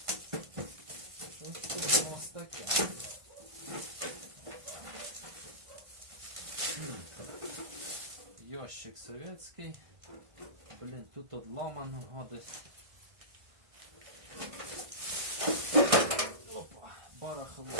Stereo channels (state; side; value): late; left; 1.5 ms